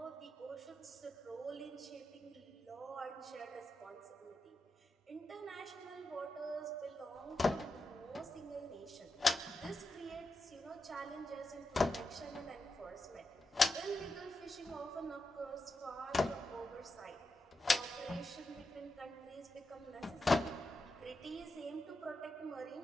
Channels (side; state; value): both; normal; correlation 0.88